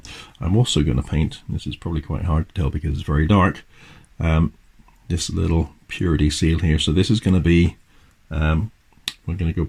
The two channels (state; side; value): identical; both; correlation 1.00